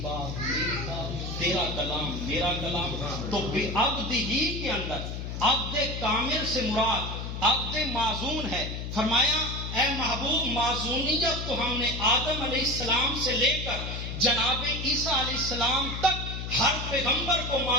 بات میری بات، تیرا کلام میرا کلام. تو عبد ہی کے اندر عبد کامل سے مراد عبد معزون ہے. فرمایا اے محبوب، معزونیت تو ہم نے آدم علیہ السلام سے لے کر جناب عیسیٰ علیہ السلام تک ہر پیغمبر کو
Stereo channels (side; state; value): left; noise; hum, 6 dB below the sound